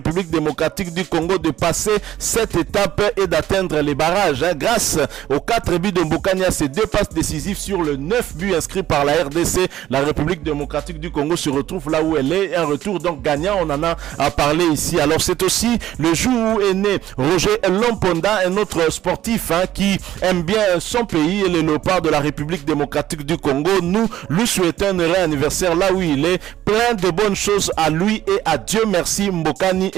démocratique du Congo de passer cette étape et d'atteindre les barrages. Grâce aux 4 buts de Mbokani, à ses 2 passes décisives sur le 9 buts inscrits par la RDC, la République démocratique du Congo se retrouve là où elle est. Un retour donc gagnant, on en a parlé ici. Alors c'est aussi le jour où est né Roger Lomponda, un autre sportif qui aime bien son pays et les léopards de la République démocratique du Congo. Nous lui souhaitons un heureux anniversaire là où il est. Plein de bonnes choses à lui et à Dieu merci Mbokani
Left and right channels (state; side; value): quieter; left; 12.9 dB